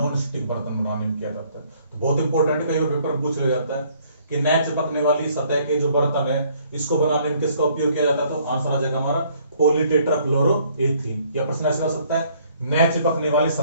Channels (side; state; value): both; inverted; correlation -0.63